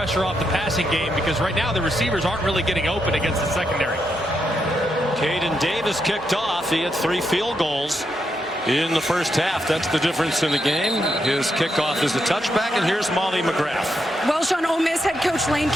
off the passing game, because right now the receivers aren't really getting open against the secondary. Caden Davis kicked off. He had 3 field goals in the first half. That's the difference in the game. His kickoff is a touchback, and here's Molly McGrath. Well, Sean, Ole Miss head coach Lane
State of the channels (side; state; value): both; normal; correlation 0.81